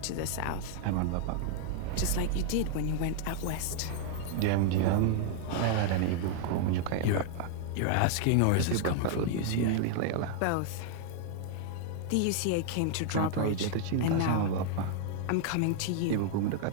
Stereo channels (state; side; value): different; both; correlation 0.00